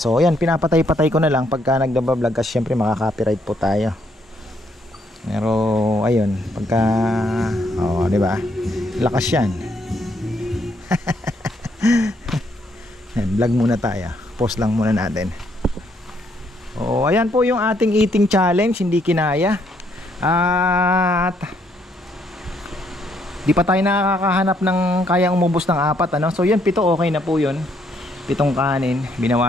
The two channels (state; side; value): normal; both; correlation 0.71